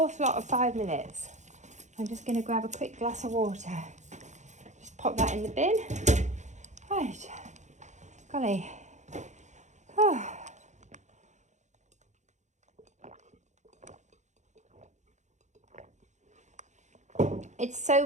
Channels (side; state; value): left; late; 0.34 ms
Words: lot of 5 minutes. I'm just going to grab a quick glass of water. Just pop that in the bin. Right. Golly. Oh. It's so